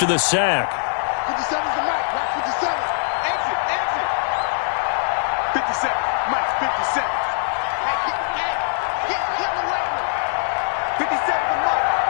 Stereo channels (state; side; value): silent; right; digital silence